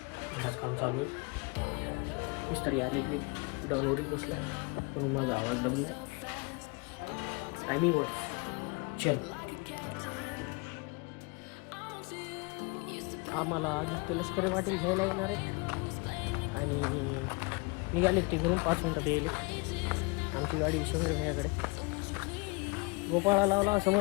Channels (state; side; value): quieter; right; 28.7 dB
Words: घरात काम चालू आहे. मिस्त्री आलेली डाऊनवरच बसला आहे, पण माझा आवाज दबला आहे. टायमिंग वर चल. आम्हाला आदित्य लष्करी वाटेल घ्यायला येणार आहे आणि निघालेत ते घरून 5 मिनिटात येईल. आमची गाडी शहर भैयाकडे. गोपाळा लावला,